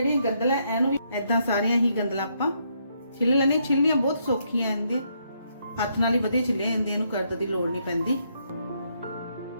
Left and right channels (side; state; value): both; inverted; correlation -0.75